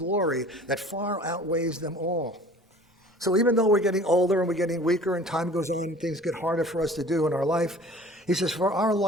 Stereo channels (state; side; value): normal; both; correlation 0.47